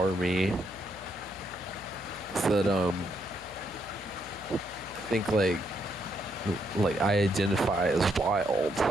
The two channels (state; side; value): noise; left; hum, 19 dB below the sound